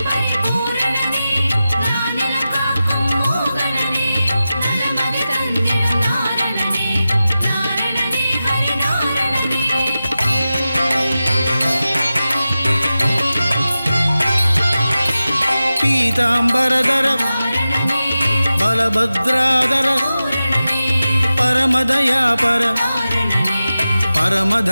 பீதாம்பரதர பலபத்ராதர பரமதயாபர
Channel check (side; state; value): both; inverted; correlation -0.94